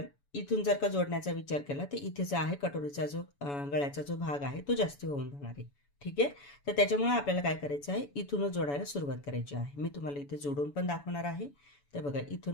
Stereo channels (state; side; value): late; right; 7.0 ms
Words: इथून जर का जोडण्याचा विचार केला तर इथे जो आहे कटोरीचा जो गळ्याचा जो भाग आहे तो जास्त होऊन जाणार आहे. ठीक आहे. तर त्याच्यामुळे आपल्याला काय करायचं आहे, इथूनच जोडायला सुरुवात करायची आहे. मी तुम्हाला इथे जोडून पण दाखवणार आहे. तर बघा,